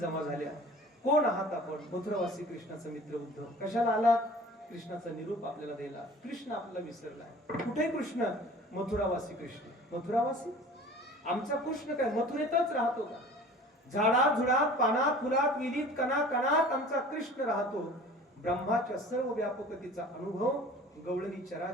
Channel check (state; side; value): normal; both; correlation 0.44